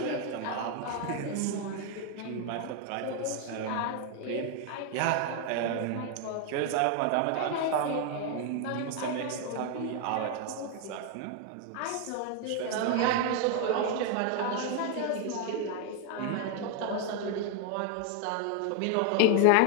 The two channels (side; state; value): both; different; correlation 0.01